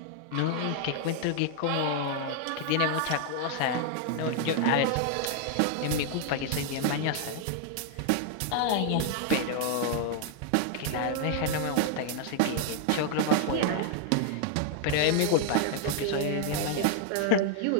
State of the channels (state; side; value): different; both; correlation 0.00